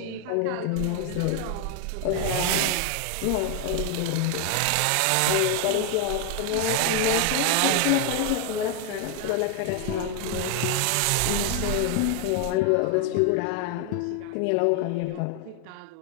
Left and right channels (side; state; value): both; different; correlation 0.01